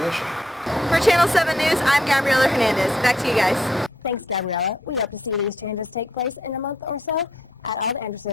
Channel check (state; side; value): normal; both; correlation 0.72